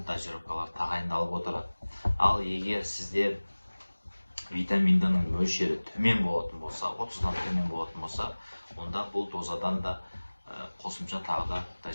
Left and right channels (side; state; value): both; inverted; correlation -1.00